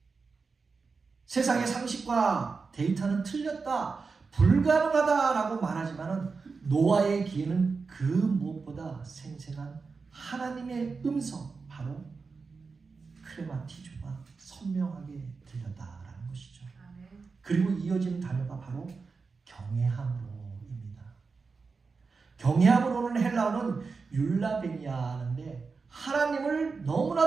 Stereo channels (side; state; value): left; quieter; 4.6 dB